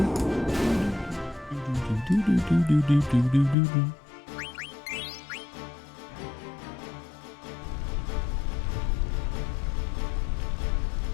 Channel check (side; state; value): right; drops out; at 3.6 s